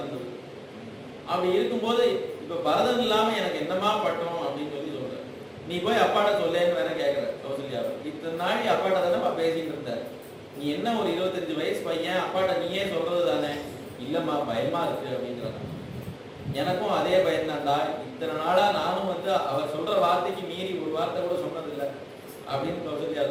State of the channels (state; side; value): identical; both; correlation 1.00